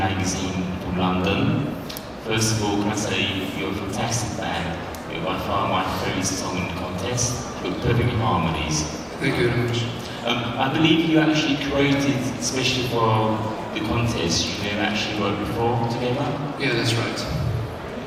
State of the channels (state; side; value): identical; both; correlation 1.00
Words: from London. First of all, can I say you're a fantastic band. You're by far my favourite song in the contest. You've got perfect harmonies. Thank you very much. I believe you actually created, especially for the contest, you have actually worked before together? Yeah, that's right.